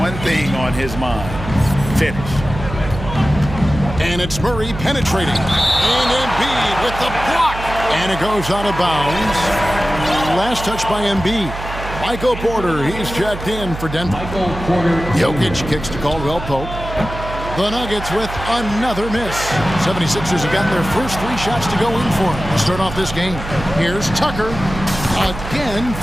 thing on his mind: finish. And it's Murray penetrating. And Embiid with the block. And it goes out of bounds. Last touch by Embiid. Michael Porter, he's checked in for Denver. Jokic kicks to Caldwell Pope. The Nuggets with another miss. 76ers have gotten their first 3 shots to go in for him to start off this game. Here's Tucker. Again,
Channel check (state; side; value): noise; right; hum, 9 dB below the sound